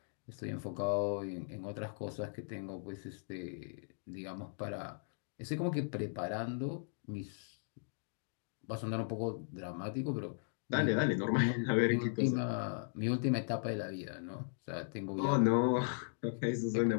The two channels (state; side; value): silent; right; digital silence